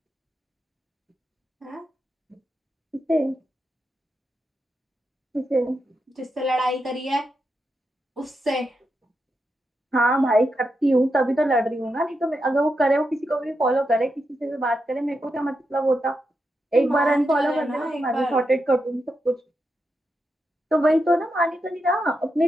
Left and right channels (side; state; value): both; normal; correlation 0.86